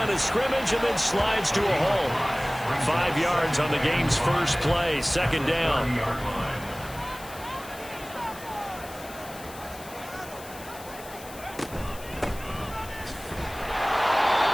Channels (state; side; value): noise; left; hiss, 17 dB below the sound